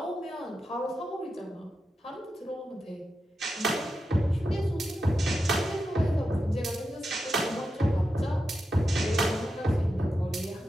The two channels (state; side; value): normal; both; correlation 0.89